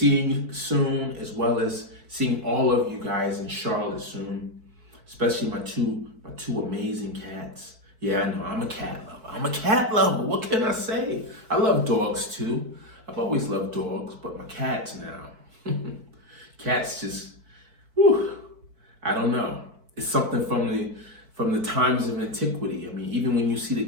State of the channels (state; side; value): late; left; 4.5 ms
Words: you soon, as well as seeing all of you guys in Charlotte soon, especially my two amazing cats. Yeah, I know, I'm a cat lover. What can I say? I love dogs too. I've always loved dogs, but my cats now. Cats just, I don't know. It's something from the times of antiquity. I mean, even when you see the